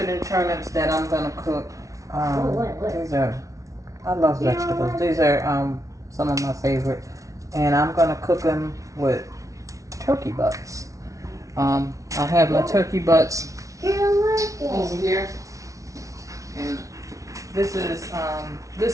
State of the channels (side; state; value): left; late; 0.16 ms